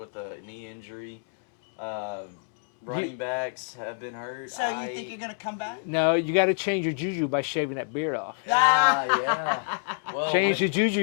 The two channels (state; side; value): silent; right; digital silence